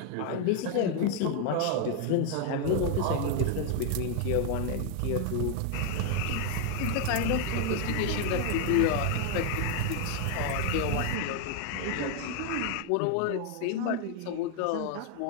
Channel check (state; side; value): different; both; correlation 0.01